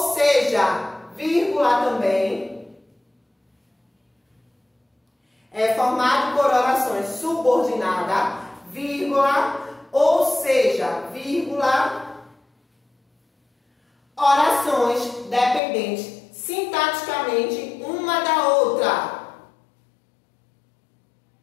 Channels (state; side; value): drops out; right; at 15.6 s